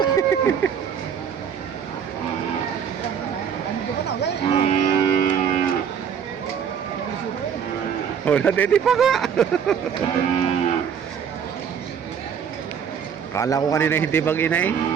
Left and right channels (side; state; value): left; quieter; 7.7 dB